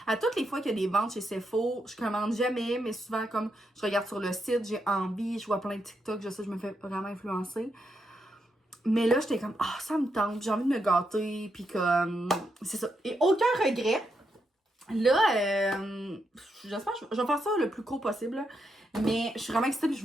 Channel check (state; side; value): normal; both; correlation 0.82